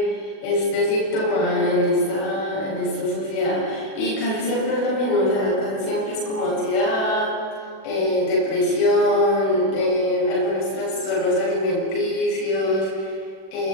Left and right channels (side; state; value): right; late; 36 ms